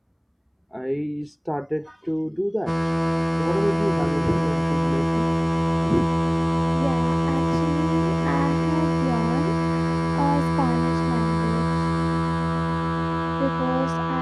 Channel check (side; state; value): both; identical; correlation 1.00